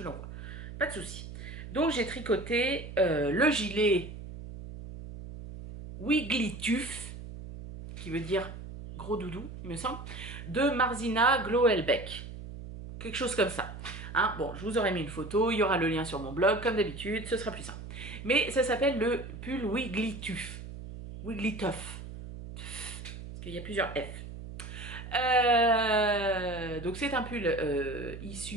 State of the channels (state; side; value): noise; right; hum, 11 dB below the sound